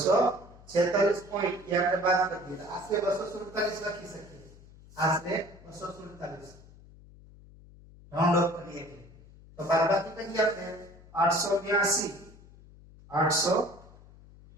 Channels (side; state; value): left; noise; hum, 22 dB below the sound